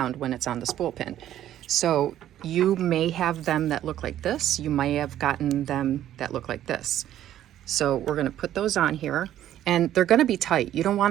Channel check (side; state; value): left; quieter; 12.0 dB